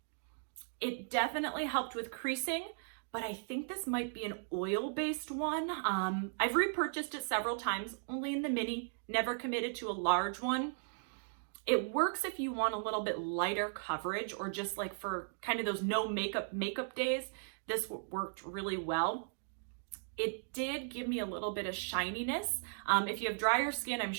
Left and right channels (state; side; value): silent; left; digital silence